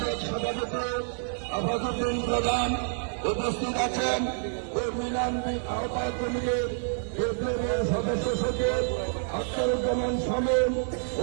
সভাপতি আফাজউদ্দিন প্রধান, উপস্থিত আছেন কর্মী ইউনিয়ন আহ্বায়ক কমিটির বিপ্লবী সদস্য সচিব আখতারুজ্জামান শামীম,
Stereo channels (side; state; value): left; silent; digital silence